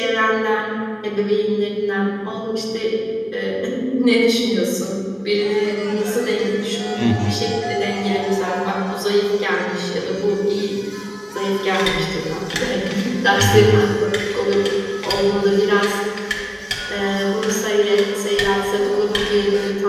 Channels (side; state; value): both; identical; correlation 1.00